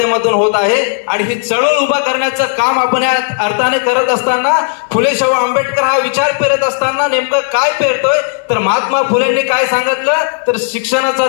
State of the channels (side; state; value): right; silent; 65 dB below the other